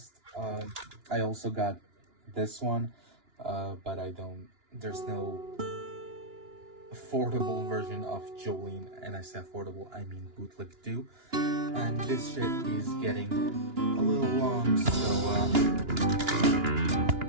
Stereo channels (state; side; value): late; left; 2.9 ms